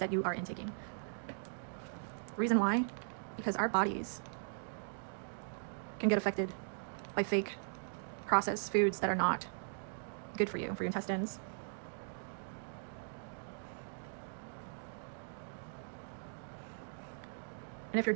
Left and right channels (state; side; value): silent; left; digital silence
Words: you are intaking. Reason why? Because our bodies can get affected by fake processed foods that are not good for you, for your intestines. And if you're